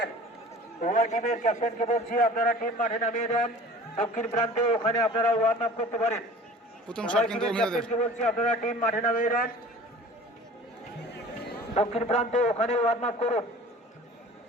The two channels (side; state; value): both; normal; correlation 0.43